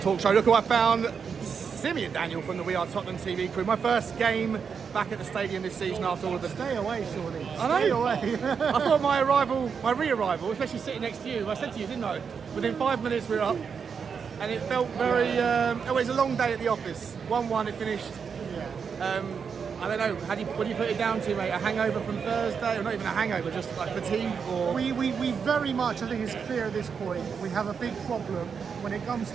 Show. Look who I found. Simeon Daniel from the We Are Tottenham TV crew. My first game back at the stadium this season after all of the... Stay away, surely. I know. Stay away. I thought my re-arrival, especially sitting next to you, I said to you, didn't I? Within 5 minutes we were up. And it felt very... it was a long day at the office. 1-1, it finished. Yeah. I don't know, what do you put it down to, mate? A hangover from Thursday? Or not even a hangover, just like fatigue? Or... We very much, I think it's clear at this point, we have a big problem when it comes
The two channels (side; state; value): left; quieter; 6.3 dB